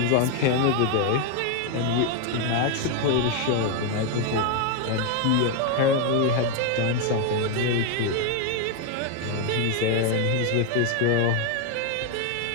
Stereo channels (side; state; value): both; different; correlation 0.01